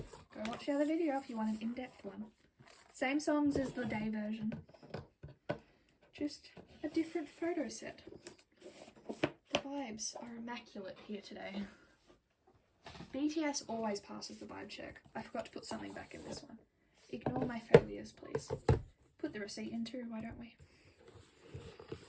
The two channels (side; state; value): both; identical; correlation 1.00